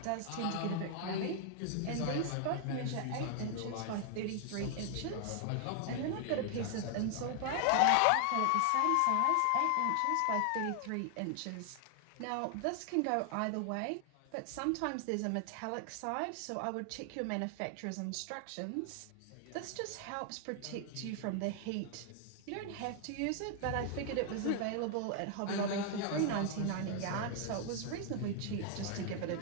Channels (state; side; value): different; both; correlation 0.00